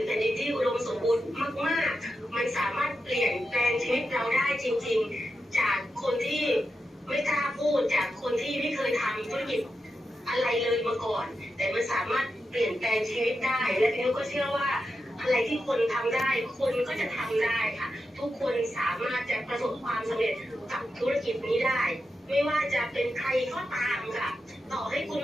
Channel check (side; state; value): both; normal; correlation 0.88